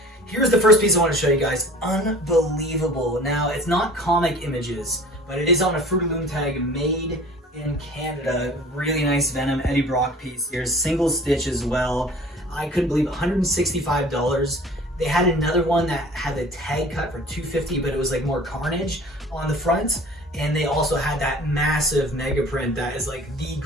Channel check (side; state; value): both; normal; correlation 0.46